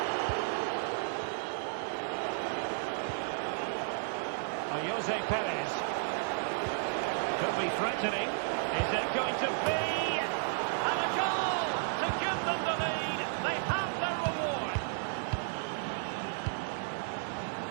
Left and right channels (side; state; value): left; silent; 56 dB below the other